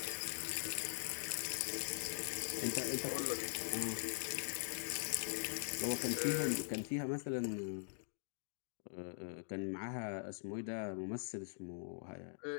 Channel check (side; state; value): right; silent; digital silence